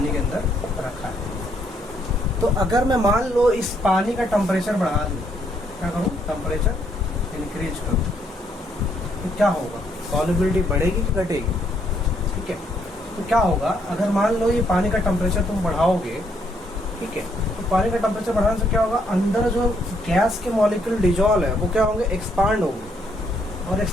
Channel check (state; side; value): normal; both; correlation 0.71